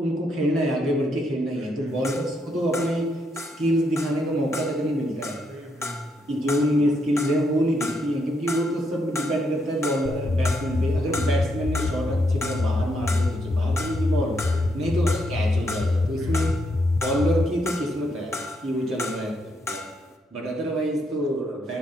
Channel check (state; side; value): normal; both; correlation 0.77